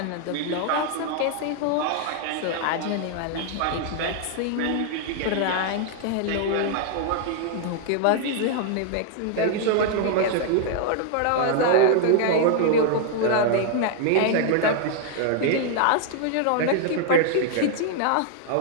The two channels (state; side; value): different; both; correlation 0.00